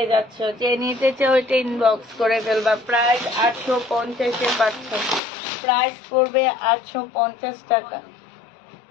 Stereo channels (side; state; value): right; drops out; at 5.2 s